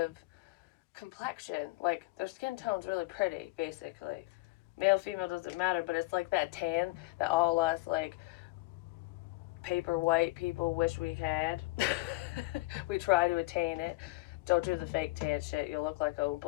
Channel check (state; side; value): quieter; right; 22.7 dB